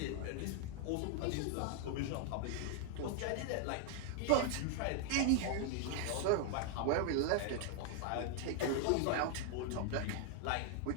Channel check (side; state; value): both; different; correlation 0.00